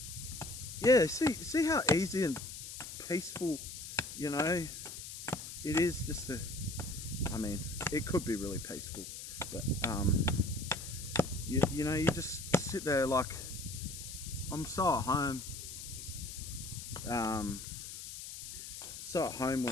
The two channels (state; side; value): noise; left; hiss, 10 dB below the sound